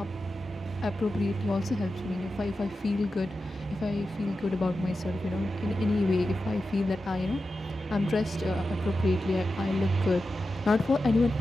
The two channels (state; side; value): normal; both; correlation 0.91